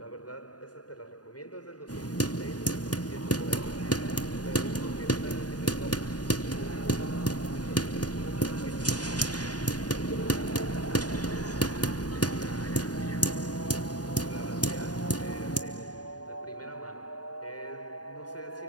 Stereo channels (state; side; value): late; right; 0.69 ms